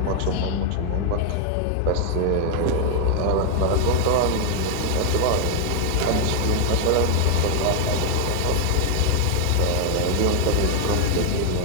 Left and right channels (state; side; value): different; both; correlation 0.00